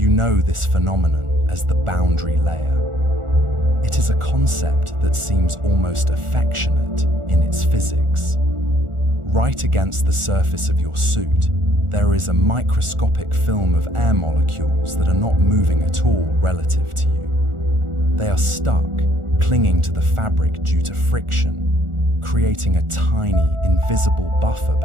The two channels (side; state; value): left; late; 1.4 ms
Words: You know this phenomenon as the boundary layer. It is a concept that seems almost affectionate in its physics. Right against the surface of your suit, there is a microscopic film of air molecules that are not moving at all relative to you. They are stuck, clinging to the fabric due to friction, creating a tiny, invisible buffer